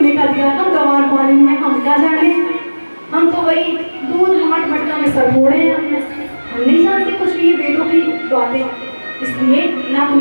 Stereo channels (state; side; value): inverted; both; correlation -1.00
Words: का अधिकार। हम गंवार पानी में, हम क्या जाने, हम तो वही दूध हाथ मटका में सर फोड़े हैं, हम नहीं जानते कुछ भी वेदों की बातें। इसलिए ना